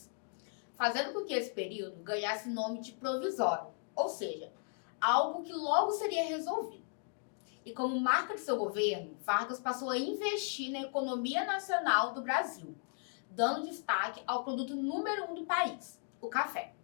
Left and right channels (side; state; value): right; silent; 54 dB below the other